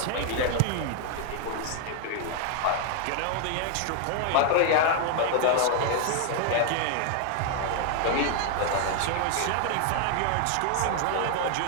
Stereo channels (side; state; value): both; different; correlation 0.00